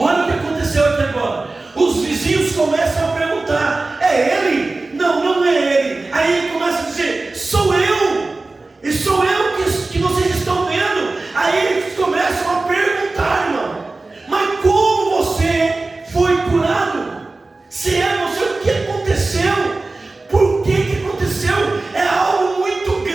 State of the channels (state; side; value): quieter; left; 3.3 dB